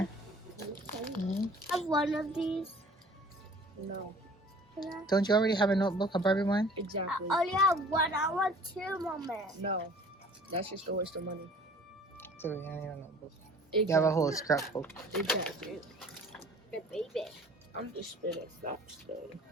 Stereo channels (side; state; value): both; normal; correlation 0.49